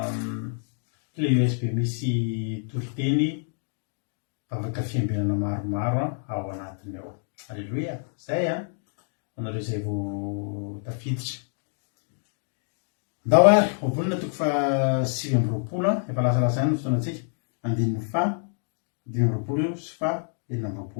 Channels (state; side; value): silent; right; 60 dB below the other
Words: clé USB misy toloteny vavaka fiambenana maromaro ao anatiny ao. Alleluia. Zay anareo izay vao tafiditra ndao ary obolina toko fa 9 efa lasalasa ihany ny fotoanantsika andininy fa 5 sy fa